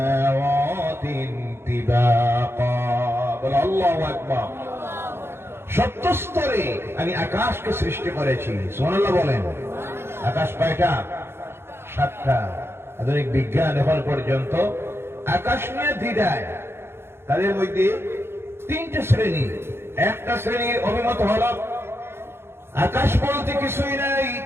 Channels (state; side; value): late; left; 0.12 ms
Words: তিবাকা। বলো আল্লাহু আকবার। 70 স্তরে আমি আকাশকে সৃষ্টি করেছি। সুবহানাল্লাহ বলেন। আকাশ কয়টা? 7টা। আধুনিক বিজ্ঞান এখন পর্যন্ত আকাশ নিয়ে দ্বিধায়। তাদের মধ্যে 3টে শ্রেণী। একটা শ্রেণীর অভিমত হলো আকাশ বলতে কিছুই নাই,